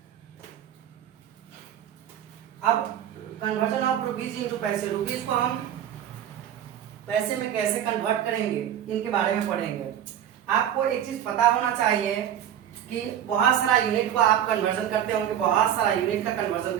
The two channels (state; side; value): quieter; left; 10.3 dB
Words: अब कन्वर्जन ऑफ रुपीज इंटू पैसे, रुपीज को हम पैसे में कैसे कन्वर्ट करेंगे इनके बारे में पढ़ेंगे। आपको एक चीज पता होना चाहिए कि बहुत सारा यूनिट को आप कन्वर्जन करते होंगे, बहुत सारा यूनिट का कन्वर्जन